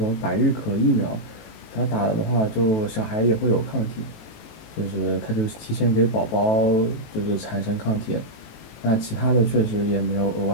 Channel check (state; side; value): late; right; 18 ms